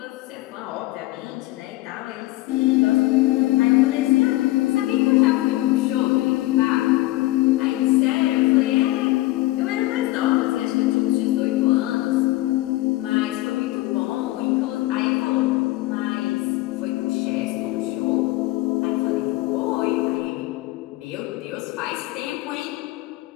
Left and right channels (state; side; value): quieter; right; 18.5 dB